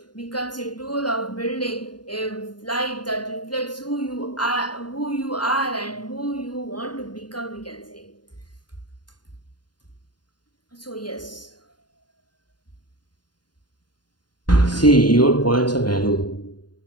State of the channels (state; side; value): late; right; 0.70 ms